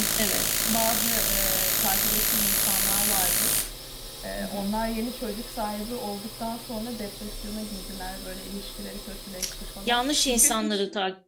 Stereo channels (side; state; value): both; identical; correlation 1.00